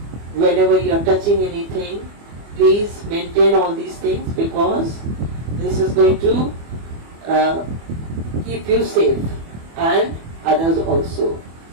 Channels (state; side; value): late; left; 24 ms